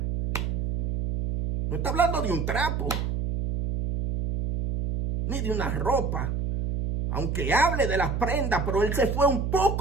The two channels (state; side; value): noise; right; hum, 1 dB below the sound